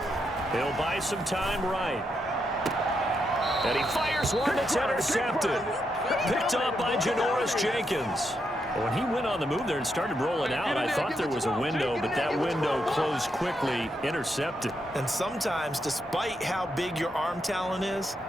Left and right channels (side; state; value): both; normal; correlation 0.81